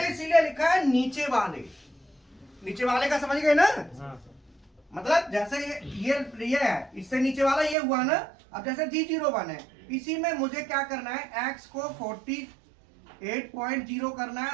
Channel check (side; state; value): left; drops out; at 7.8 s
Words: इसीलिए लिखा है नीचे वाले का, समझ गए ना। मतलब जैसे ये है, इससे नीचे वाला ये हुआ ना। अब जैसे G01 है, इसी में मुझे क्या करना है, x को 48.0 करना है